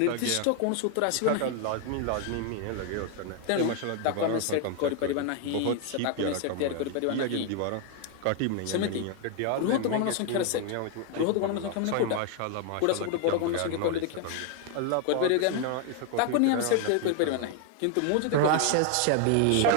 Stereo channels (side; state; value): both; different; correlation 0.00